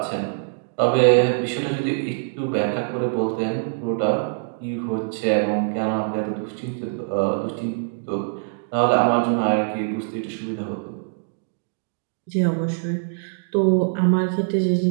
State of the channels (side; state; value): left; silent; digital silence